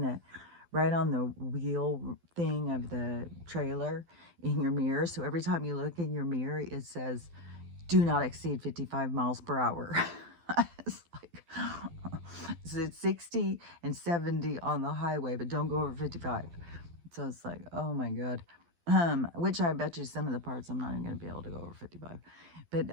the wheel thing of the trailer in your mirror. So every time you look in your mirror, it says, do not exceed 55 miles per hour. It's like, so it's 60 and 70 on the highway, but don't go over 55. So it's like, oh my God. Which I bet you some of the parts I'm not even going to be able to go over 55. But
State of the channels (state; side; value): late; left; 12 ms